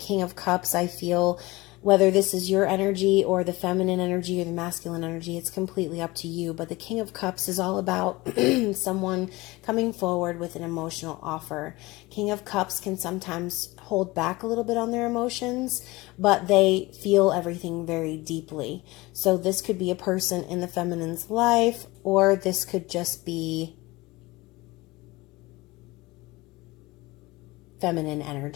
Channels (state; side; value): quieter; right; 21.4 dB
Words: of Cups, I feel whether this is your energy or the feminine energy or the masculine energy, it's completely up to you. But the King of Cups is all about someone coming forward with an emotional offer. King of Cups can sometimes hold back a little bit on their emotions, but they feel everything very deeply. So this could be a person in the feminine's life, or this could just be feminine